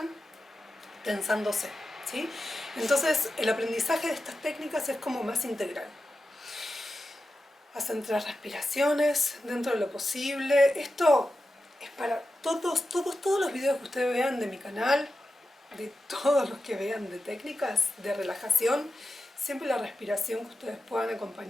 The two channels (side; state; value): both; normal; correlation 0.91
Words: tensándose, ¿sí? Entonces el aprendizaje de estas técnicas es como más integral. Hacen 3 respiraciones dentro de lo posible. Esto es para todos los videos que ustedes vean de mi canal, de todos los que vean de técnicas de relajación, siempre la respiración que ustedes puedan